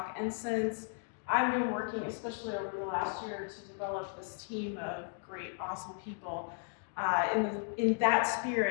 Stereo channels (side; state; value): right; silent; 54 dB below the other